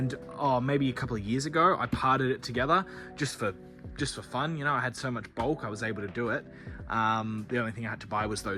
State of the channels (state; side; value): identical; both; correlation 1.00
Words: maybe a couple of years ago, I parted it together just for fun. You know, I had so much bulk, I was able to do it. The only thing I had to buy was